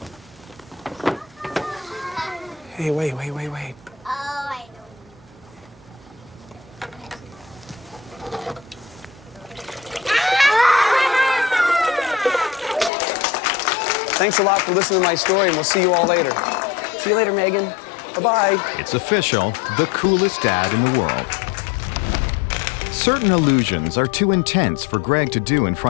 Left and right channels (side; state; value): right; drops out; at 12.9 s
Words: Hey, wait. Oh, I know. Thanks a lot for listening to my story, and we'll see you all later. See you later, Megan. Bye-bye. It's official, the coolest dad in the world. Certain illusions are too intense for Greg to do in